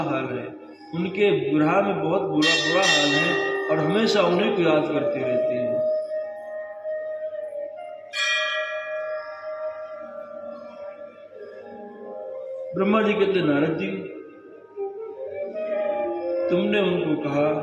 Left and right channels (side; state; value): both; identical; correlation 1.00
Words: हाल है, उनके विरह में बहुत बुरा हाल है, और हमेशा उन्हीं को याद करती रहती है। ब्रह्मा जी कहते, नारद जी, तुमने उनको कहा